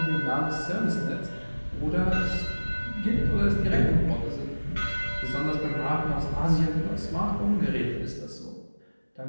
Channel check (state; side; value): inverted; both; correlation -1.00